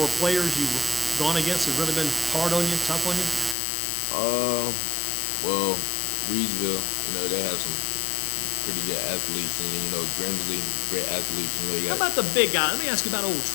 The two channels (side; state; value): right; drops out; at 3.6 s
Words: players you've gone against that have really been hard on you, tough on you? Well, Reedsville, you know, they have some pretty good athletes, and then, you know, Grimsley, great athletes. You know, How about the big guy? Let me ask you about old